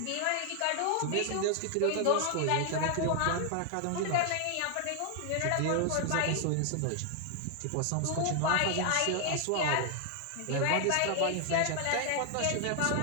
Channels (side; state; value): both; different; correlation 0.00